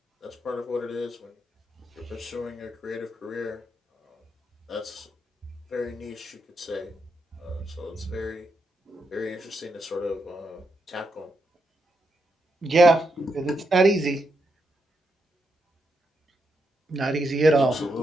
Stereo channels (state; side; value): normal; both; correlation 0.82